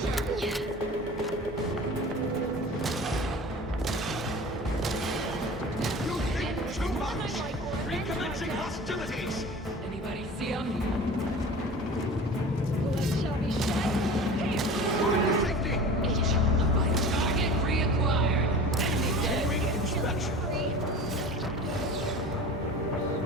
Anybody see him? Target reacquired. Enemy dead. Inspection.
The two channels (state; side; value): normal; both; correlation 0.38